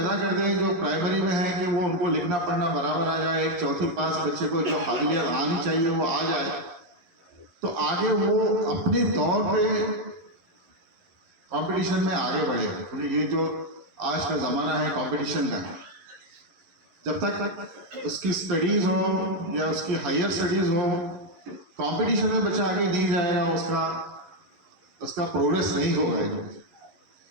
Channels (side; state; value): left; late; 11 ms